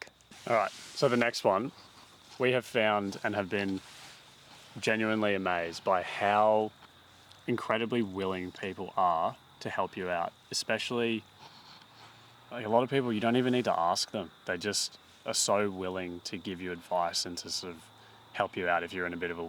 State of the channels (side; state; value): both; identical; correlation 1.00